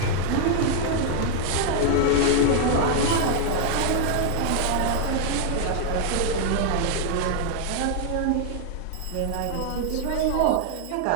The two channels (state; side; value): different; both; correlation 0.00